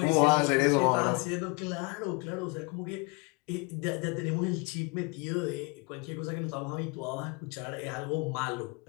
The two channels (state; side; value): quieter; right; 30.0 dB